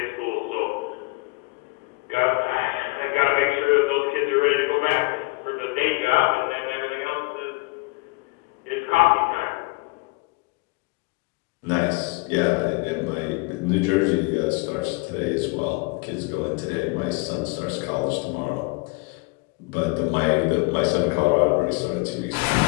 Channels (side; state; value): right; quieter; 26.5 dB